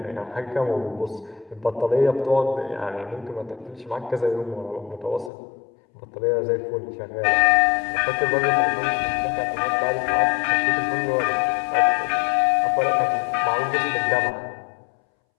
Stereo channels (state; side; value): drops out; right; at 5.3 s